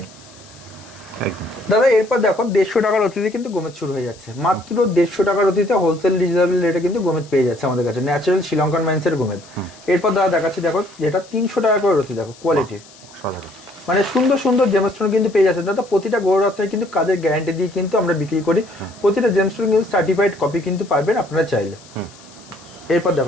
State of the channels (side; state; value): left; noise; hiss, 23 dB below the sound